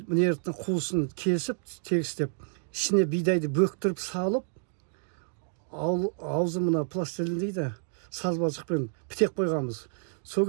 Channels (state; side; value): silent; left; 58 dB below the other